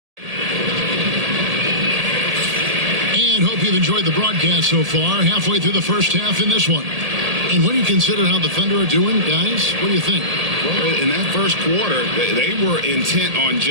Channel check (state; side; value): late; left; 1.8 ms